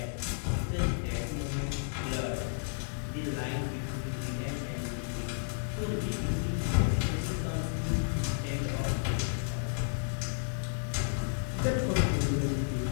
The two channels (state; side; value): silent; right; digital silence